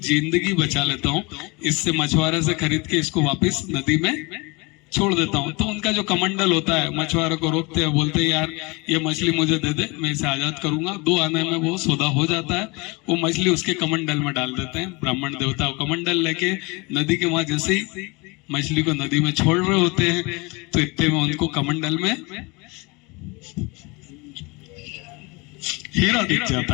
जिंदगी बचा लेता हूँ, इससे मछुआरे से खरीद के इसको वापस नदी में छोड़ देता हूँ। तो उनका जो कमंडल होता है मछुआरों को रोकते हैं, बोलते हैं यार ये मछली मुझे दे दे, मैं इसे आजाद करूंगा। 2 आने में वो सौदा हो जाता है, वो मछली उसके कमंडल में डाल देते हैं। ब्राह्मण देवता कमंडल लेके नदी के वहां जैसे ही मछली को नदी में छोड़ रहे होते हैं तो इतने में उनको कमंडल में हीरा दिख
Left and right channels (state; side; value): quieter; right; 26.9 dB